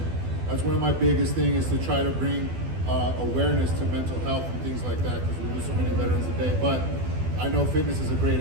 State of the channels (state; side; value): late; left; 12 ms